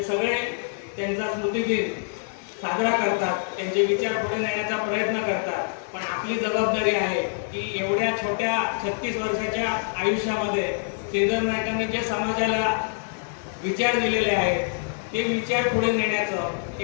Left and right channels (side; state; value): right; silent; 61 dB below the other